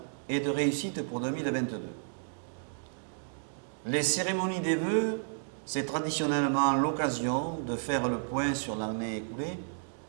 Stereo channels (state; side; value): silent; left; digital silence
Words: et de réussite pour 2022. Les cérémonies des vœux, c'est traditionnellement l'occasion de faire le point sur l'année écoulée